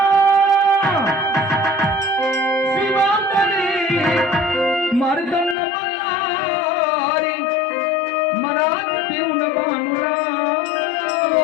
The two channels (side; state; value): right; drops out; at 5.6 s